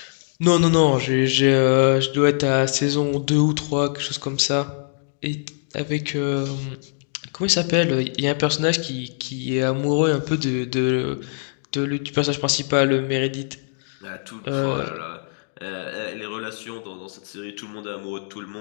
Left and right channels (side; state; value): right; silent; digital silence